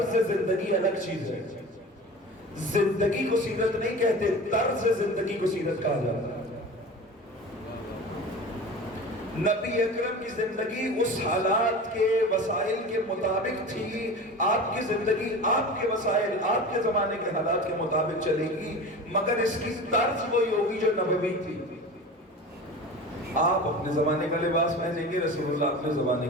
زندگی الگ چیز ہے. زندگی کو سیرت نہیں کہتے، طرز زندگی کو سیرت کہا جاتا ہے. نبی اکرم کی زندگی اس حالات کے وسائل کے مطابق تھی. آپ کی زندگی آپ کے وسائل، آپ کے زمانے کے حالات کے مطابق چلے گی، مگر اس کی طرز وہی ہوگی جو نبوی تھی. آپ اپنے زمانے کا لباس پہنیں گے، رسول اللہ اپنے زمانے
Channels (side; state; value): both; normal; correlation 0.34